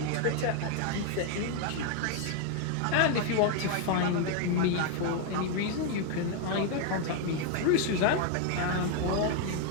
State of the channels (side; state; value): both; different; correlation 0.01